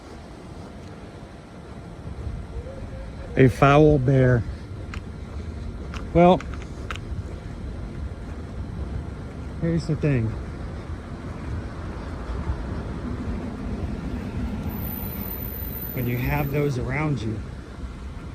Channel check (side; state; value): both; identical; correlation 1.00